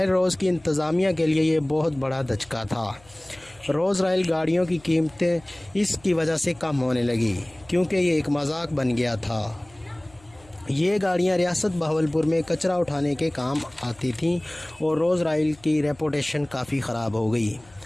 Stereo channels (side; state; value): left; noise; hum, 27 dB below the sound